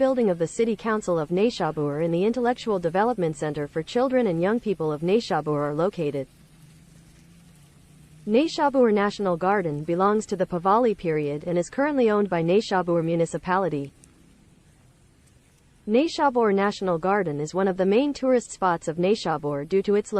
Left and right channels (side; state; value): both; identical; correlation 1.00